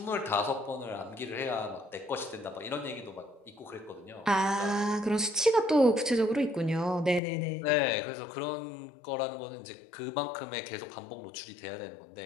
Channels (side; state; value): right; drops out; at 7.2 s